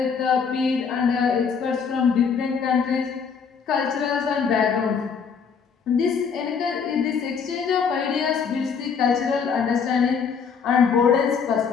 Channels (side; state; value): right; quieter; 6.2 dB